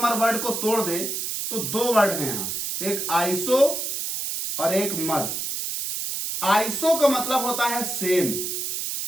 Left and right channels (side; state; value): right; noise; hiss, 3 dB below the sound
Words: वर्ड को तोड़ दें, तो दो वर्ड हैं यहां, एक आइसो और एक मर्स। आइसो का मतलब होता है सेम